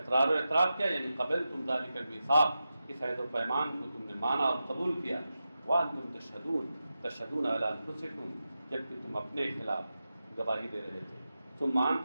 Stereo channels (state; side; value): inverted; both; correlation -0.91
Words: و اعتراف کیا یعنی قبلتم ذلک المیثاق، اس عہد و پیمان کو تم نے مانا اور قبول کیا. وانتم تشهدون علی انفسکم، جبکہ تم اپنے خلاف گواہی دے رہے تھے. ثم